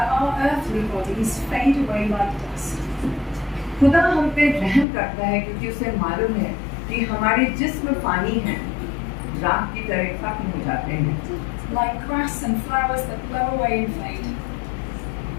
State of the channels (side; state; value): right; drops out; at 4.9 s